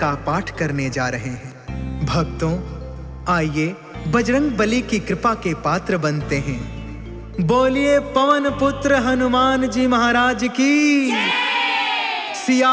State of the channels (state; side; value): identical; both; correlation 1.00